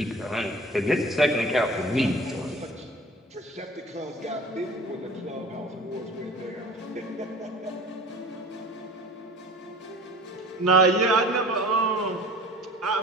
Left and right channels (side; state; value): both; normal; correlation 0.42